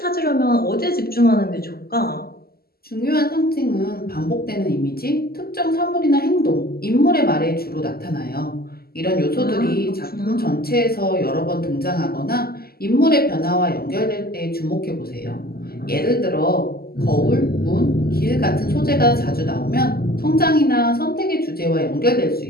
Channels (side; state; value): right; late; 0.45 ms